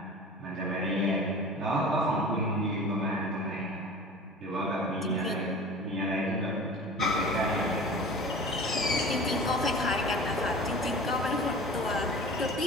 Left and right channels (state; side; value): normal; both; correlation 0.39